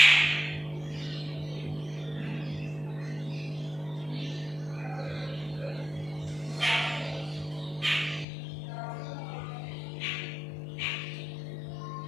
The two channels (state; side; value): drops out; right; at 8.2 s